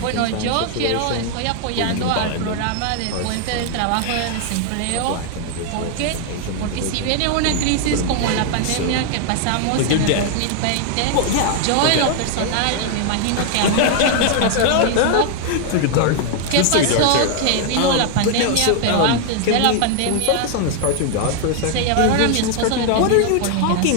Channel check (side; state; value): both; different; correlation 0.00